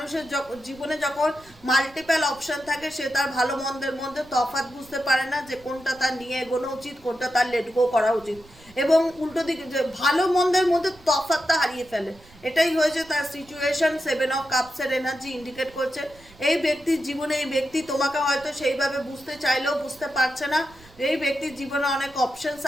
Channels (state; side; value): noise; right; rumble, 24 dB below the sound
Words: জীবনে যখন মাল্টিপল অপশন থাকে সে তার ভালো মন্দের মধ্যে তফাৎ বুঝতে পারে না, যে কোনটা তার নিয়ে এগোনো উচিত, কোনটা তার লেট গো করা উচিত, এবং উল্টো দিকে যে ভালো মন্দের মধ্যে তফাৎটা হারিয়ে ফেলে। এটাই হয়েছে তার সিচুয়েশন। 7 অফ কাপসের এনার্জি ইন্ডিকেট করছে এই ব্যক্তির জীবনে এই ব্যক্তি তোমাকে হয়তো সেইভাবে বুঝতে চাইলেও বুঝতে পারছে না। এই ব্যক্তির জীবনে অনেক অপশনস